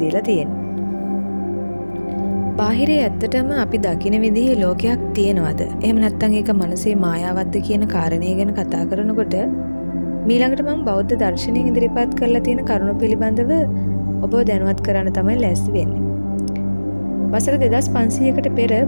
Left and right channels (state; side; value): inverted; both; correlation -1.00